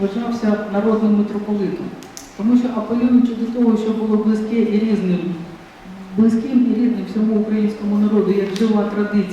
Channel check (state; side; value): identical; both; correlation 1.00